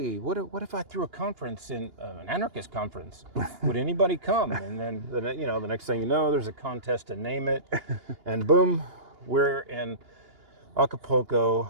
what if I threw a conference an anarchist conference? Would anybody come? And then, the next thing you know, there's a contest to name it. And boom, we're in Acapulco,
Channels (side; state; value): left; late; 2.8 ms